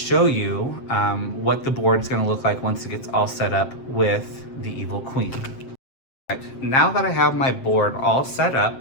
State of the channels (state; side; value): late; right; 7.6 ms